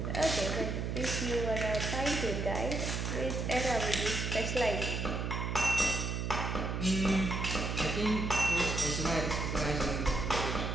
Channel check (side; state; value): right; noise; hum, 2 dB below the sound